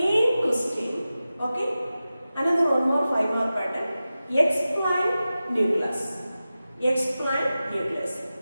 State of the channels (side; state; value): both; inverted; correlation -0.94